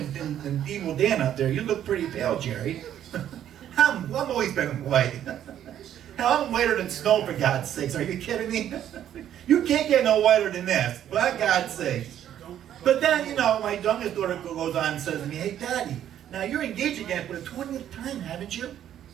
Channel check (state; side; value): quieter; left; 10.7 dB